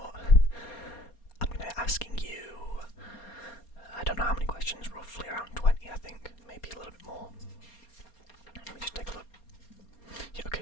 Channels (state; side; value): late; right; 4.3 ms